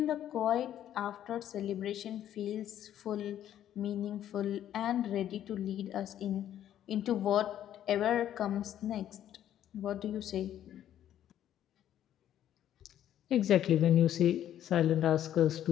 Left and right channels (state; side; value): quieter; right; 11.2 dB